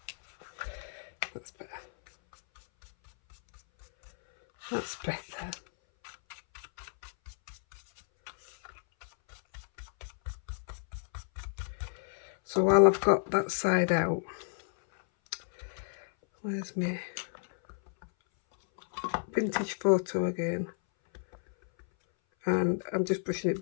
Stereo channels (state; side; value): silent; right; 56 dB below the other